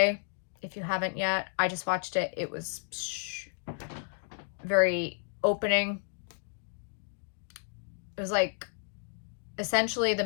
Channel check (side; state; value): right; silent; digital silence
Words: if you haven't yet. I just watched it. It was very opening. It was like, essentially the